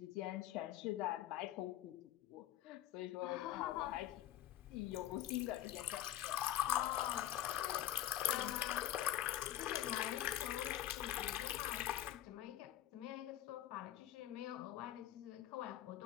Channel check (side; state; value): right; quieter; 12.8 dB